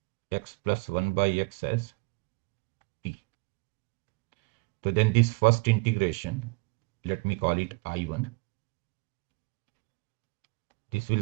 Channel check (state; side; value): quieter; left; 27.7 dB